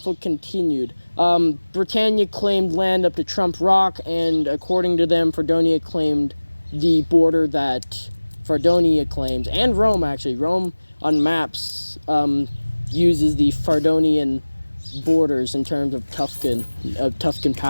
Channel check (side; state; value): both; inverted; correlation -1.00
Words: continued. Britannia claimed land up to Trump Rock, and according to them, Fardonia claimed the border that Fardonia claims, and Rome, actually. Rome, on maps, uses the Fardonian borders in terms of Tuscan